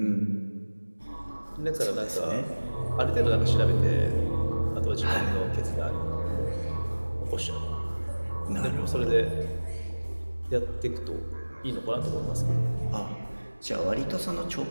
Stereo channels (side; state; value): both; inverted; correlation -1.00